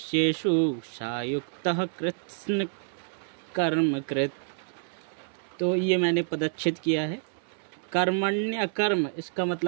सा युक्तः कृत्स्न कर्म कृत। तो ये मैंने पदच्छेद किया है। कर्मण्य अकर्म इसका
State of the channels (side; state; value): left; silent; 59 dB below the other